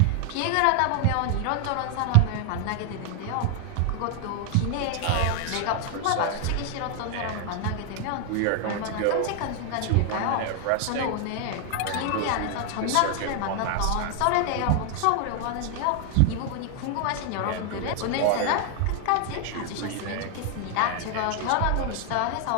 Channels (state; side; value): different; both; correlation 0.00